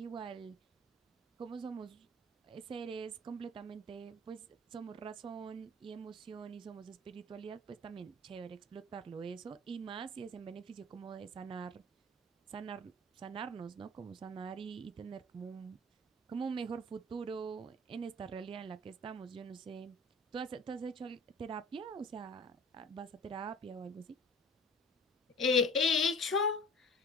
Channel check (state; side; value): normal; both; correlation 0.45